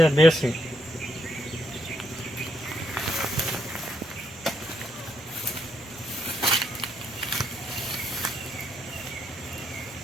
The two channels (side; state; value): both; normal; correlation 0.76